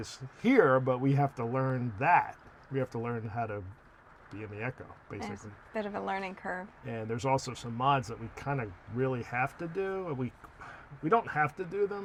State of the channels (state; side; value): identical; both; correlation 1.00